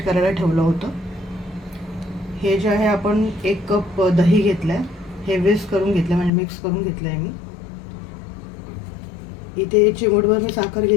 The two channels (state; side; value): drops out; right; at 6.3 s